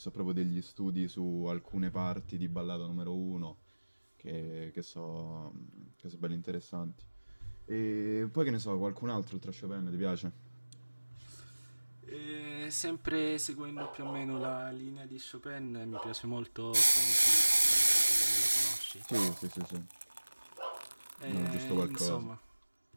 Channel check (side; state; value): both; inverted; correlation -1.00